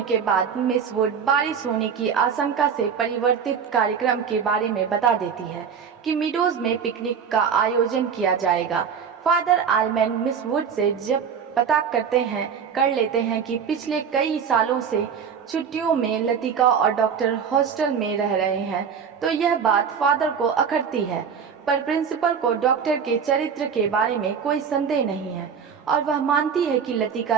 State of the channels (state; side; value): quieter; left; 6.9 dB